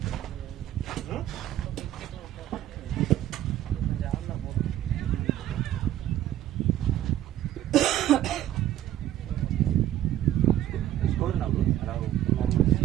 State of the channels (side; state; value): left; quieter; 12.7 dB